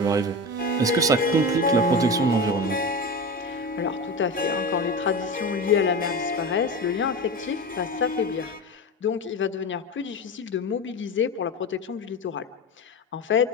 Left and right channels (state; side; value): normal; both; correlation 0.25